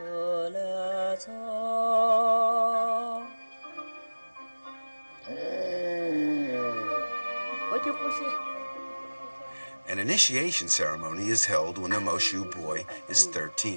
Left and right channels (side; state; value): both; inverted; correlation -1.00